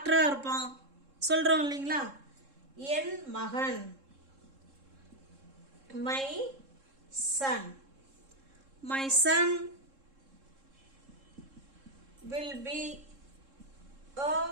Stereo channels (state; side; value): late; left; 3.7 ms